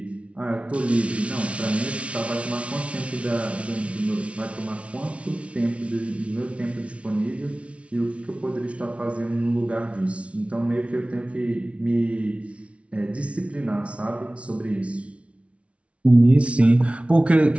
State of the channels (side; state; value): left; late; 0.062 ms